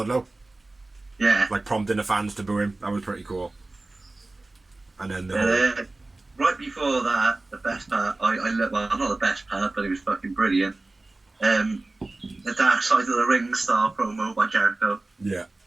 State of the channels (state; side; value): quieter; left; 3.0 dB